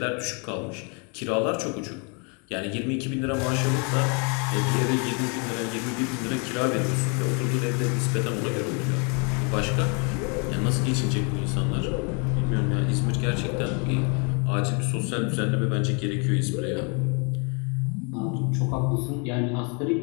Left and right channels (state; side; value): quieter; right; 35.1 dB